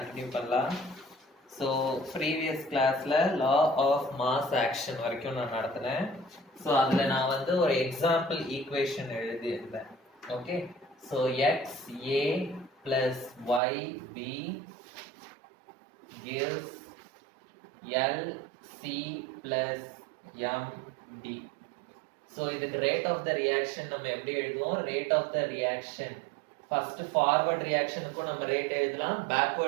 பண்ணலாம். So previous classல law of mass action வரைக்கும் நான் நடத்தினேன். So அதுல நான் வந்து ஒரு example equation எழுதியிருந்தேன். Okay, so xa plus yb gives lc plus md. So இதுக்கு rate of the reaction நம்ம எப்படி எழுதுவோம்? Rate of the reaction first forward reaction க்கு நம்ம ரேட் எழுதலாம்,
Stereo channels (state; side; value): drops out; left; at 13.6 s